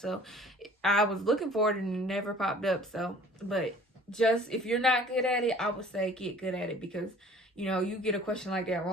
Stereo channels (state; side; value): normal; both; correlation 0.50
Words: I was looking for it and it never popped up. So, but just if you're not good at it, I would say get good at it, because you know, you get a question like that